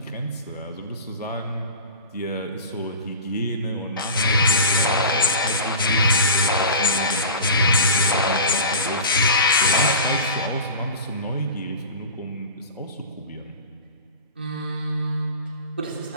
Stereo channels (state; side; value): inverted; both; correlation -0.33